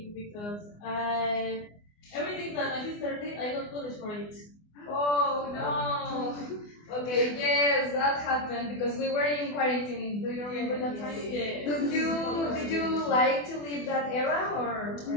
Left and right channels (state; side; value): late; right; 24 ms